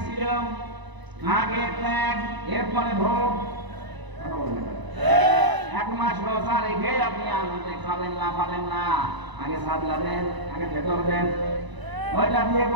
ছিল? আগে ত্যাগ, এরপরে ভোগ। 1 মাস রোজা রেখে আপনি আনন্দে খাবেন না, পাবেন না। আগে সাদলাবেন, আগে ভেতর দেন। ওইটা দিয়ে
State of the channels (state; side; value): late; left; 1.0 ms